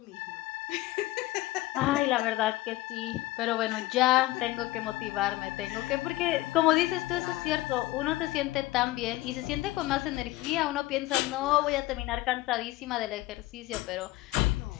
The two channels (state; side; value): quieter; right; 17.9 dB